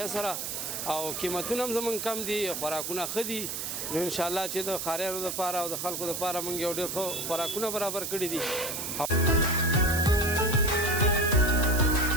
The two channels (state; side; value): noise; right; hiss, 4 dB below the sound